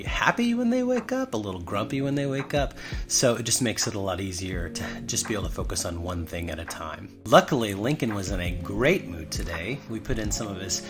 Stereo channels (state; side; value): identical; both; correlation 1.00